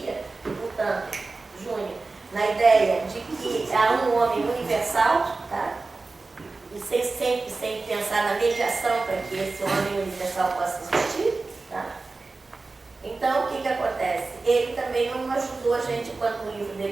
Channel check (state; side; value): quieter; left; 3.7 dB